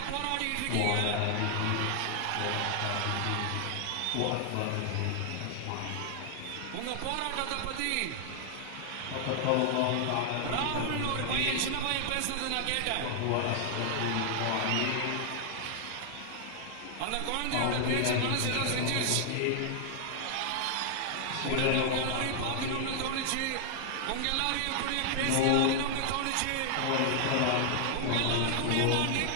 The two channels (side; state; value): both; different; correlation 0.00